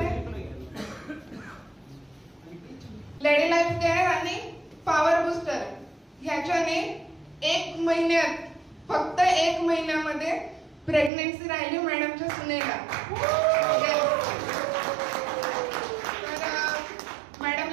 लेडी लाईफ केअर आणि पॉवर बूस्टर ह्याच्याने 1 महिन्यात, फक्त 1 महिन्यामध्ये प्रेग्नेन्सी राहिली मॅडमच्या सुनेला. तर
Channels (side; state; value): left; drops out; at 11.1 s